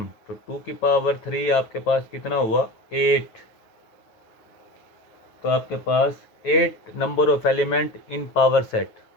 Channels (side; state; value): right; late; 9.4 ms